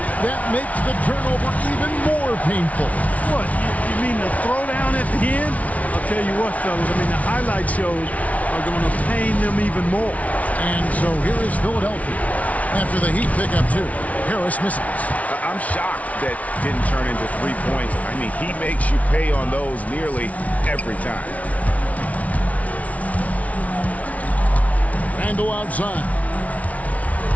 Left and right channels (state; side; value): late; right; 0.068 ms